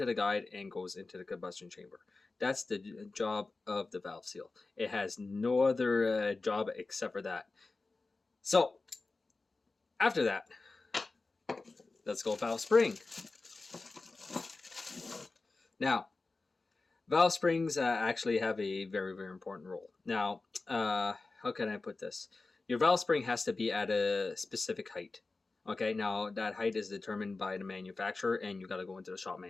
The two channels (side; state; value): right; quieter; 3.6 dB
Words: the guide and goes into the combustion chamber. That's the job of the valve seal. It has no other job except for that. So, after that, let's go valve spring. Now, valve springs actually have a very, very important role. Now, how can I put this? Your valve spring has to be at a specific height. Okay, now that height is determined by the manufacturer, and you got to go into the shop